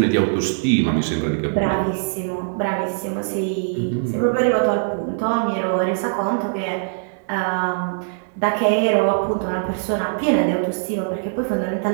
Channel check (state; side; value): silent; left; digital silence